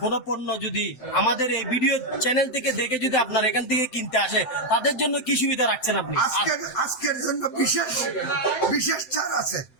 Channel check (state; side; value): late; right; 7.7 ms